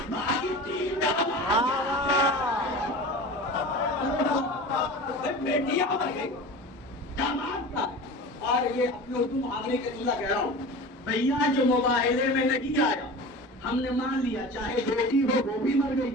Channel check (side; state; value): both; normal; correlation 0.34